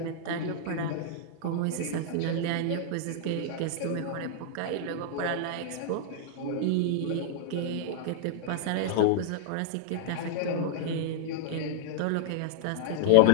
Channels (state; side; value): different; both; correlation -0.01